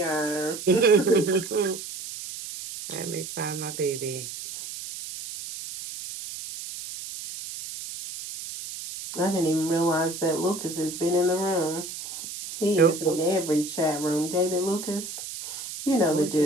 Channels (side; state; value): right; noise; hiss, 9 dB below the sound